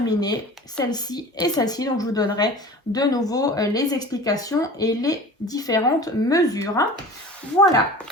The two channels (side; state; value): both; normal; correlation 0.39